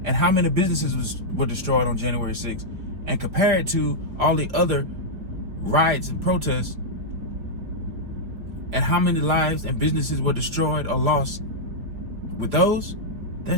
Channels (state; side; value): late; left; 5.1 ms